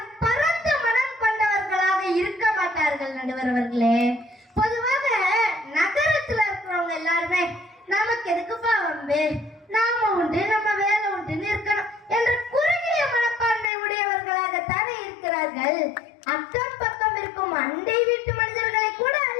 பரந்த மனம் கொண்டவர்களாக இருக்க மாட்டார்கள் நடுவர் அவர்களே. பொதுவாக நகரத்துல இருக்கிறவங்க எல்லாருமே நமக்கு எதுக்குப்பா வம்பு, நாம உண்டு நம்ம வேலை உண்டுன்னு இருக்கணும் என்ற குறுகிய மனப்பான்மை உடையவர்களாகத்தானே இருக்கிறார்கள். அக்கம் பக்கம் இருக்கும் அண்டை வீட்டு மனிதர்களை கூட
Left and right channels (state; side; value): drops out; right; at 13.7 s